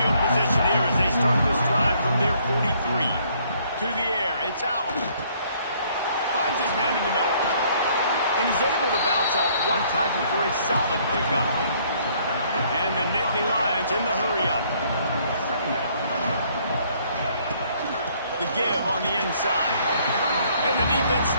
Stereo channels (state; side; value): inverted; both; correlation -0.64